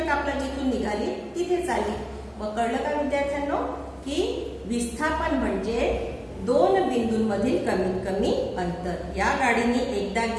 कापलं, जिथून निघाली तिथेच आली. मग कळलं का विद्यार्थ्यांनो? की विस्थापन म्हणजे दोन बिंदूंमधील कमीत कमी अंतर. या गाडीने एकदा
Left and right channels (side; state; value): both; identical; correlation 1.00